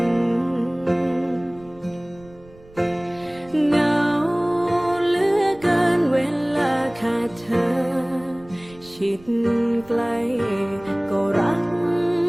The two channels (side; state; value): right; noise; rumble, 24 dB below the sound